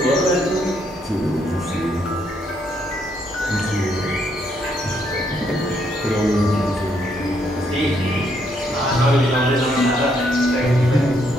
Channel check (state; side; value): normal; both; correlation 0.73